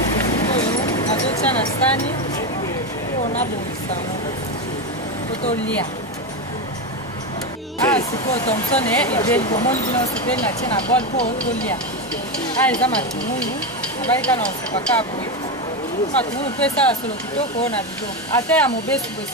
oyo nazotia na sani oyo nabongisa po tolia sikoyo Thomson ebeli bomoni bino sepeli natie na bol po tolia eza matungulu nabalika na osepaka boye matungulu mpe esala solo kitoko oyo na biloko ata ya mobesu boye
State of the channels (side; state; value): both; normal; correlation 0.13